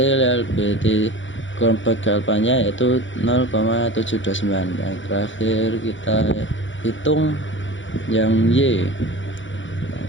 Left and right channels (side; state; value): right; late; 0.55 ms